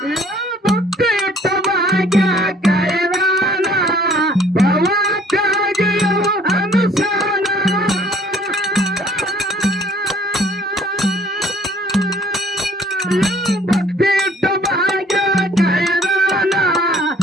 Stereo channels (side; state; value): both; normal; correlation 0.56